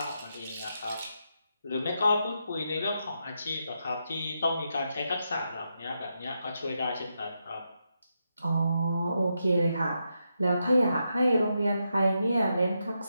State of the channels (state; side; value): inverted; both; correlation -0.84